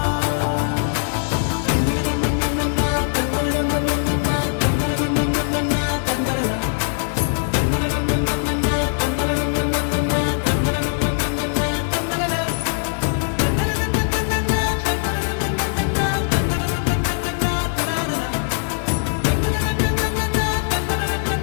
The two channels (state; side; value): silent; right; 61 dB below the other